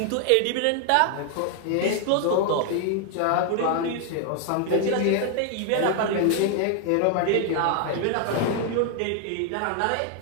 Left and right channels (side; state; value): both; different; correlation 0.00